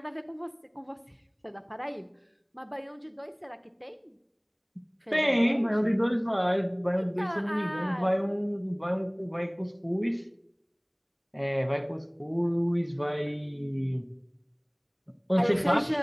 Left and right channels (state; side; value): identical; both; correlation 1.00